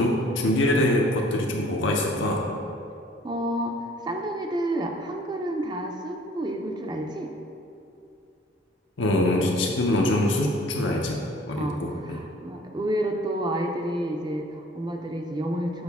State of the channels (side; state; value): both; normal; correlation 0.54